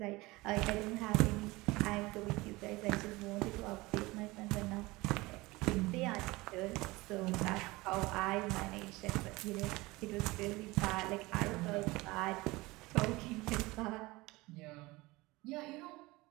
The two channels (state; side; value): quieter; left; 21.6 dB